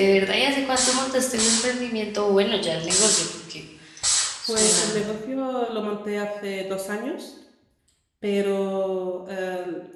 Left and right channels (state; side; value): identical; both; correlation 1.00